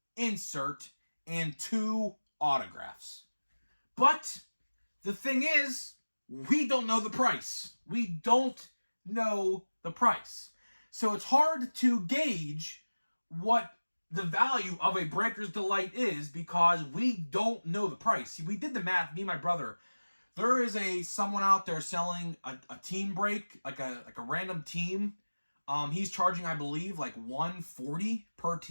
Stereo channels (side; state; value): both; inverted; correlation -1.00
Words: insert, and 2 autographs. But the thing is, we don't know the price. We don't know the price. So it's hard to gauge what the value of a Breakers Delight is because we don't know the price. See, we did the math, me and my brother. There is someone out there selling a team break, like a random team. He's charging, I believe, like $140 per